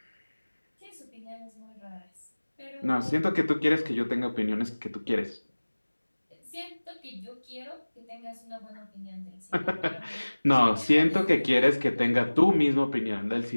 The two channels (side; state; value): both; inverted; correlation -1.00